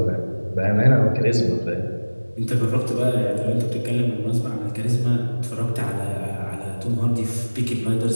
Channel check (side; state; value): both; inverted; correlation -1.00